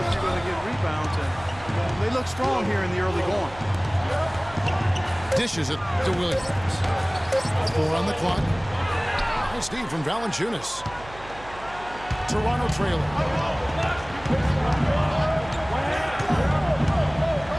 if you're going to get rebounds. And they look strong here in the early going. Dishes it to Williams. 4 on the clock. Nice steal from Valanciunas. Toronto trailing.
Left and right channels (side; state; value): right; noise; hum, 18 dB below the sound